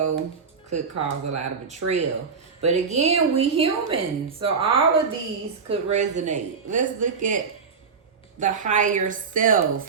could cause a lot of betrayal. But again, we human. So all of these could resonate. Let's look at the higher self.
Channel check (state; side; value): quieter; left; 5.5 dB